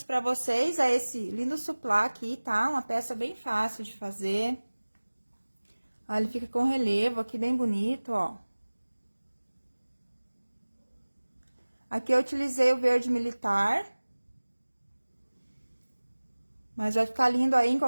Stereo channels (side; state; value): both; inverted; correlation -1.00